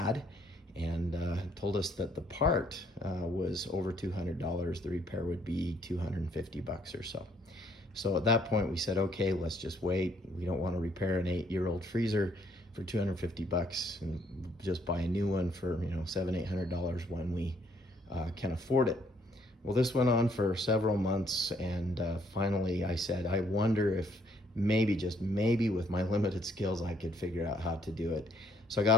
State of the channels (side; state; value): both; normal; correlation 0.67